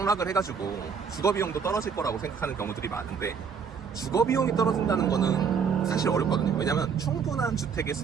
해가지고 주거비용도 떨어질 거라고 생각하는 경우들이 많은데, 주거비용이 떨어진다는 거는 사실 어렵거든요. 왜냐면 충분한 주택의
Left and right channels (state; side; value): quieter; left; 6.3 dB